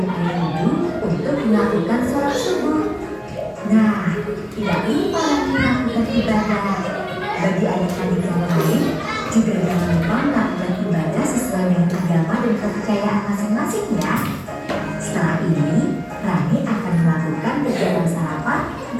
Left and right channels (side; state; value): both; identical; correlation 1.00